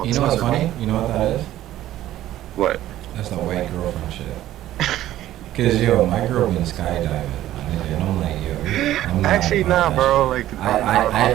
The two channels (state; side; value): quieter; left; 13.7 dB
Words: You know what's funny? You know what that is? What? That's the white girlfriend shit. Cause yo, my girl been skydiving, my nigga, and I'm like, yo, I'm not Actually, nah, bro. Like,